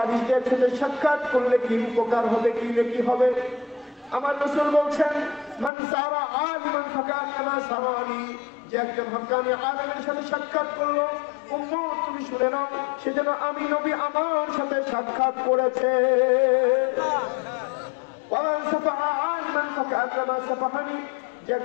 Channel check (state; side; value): drops out; right; at 5.7 s